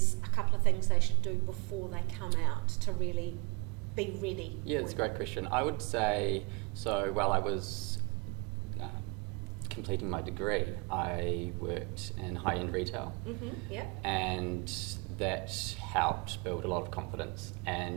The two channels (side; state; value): left; quieter; 30.5 dB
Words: a couple of things they should do before they come out to really be ready? Yeah, that's a great question. I would say, so while I was completing my degree, I worked in high-end retail. Yeah. And that helped build a lot of confidence.